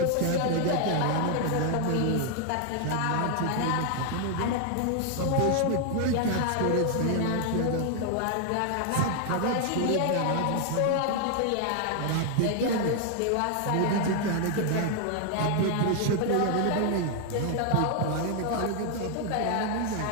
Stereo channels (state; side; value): different; both; correlation 0.00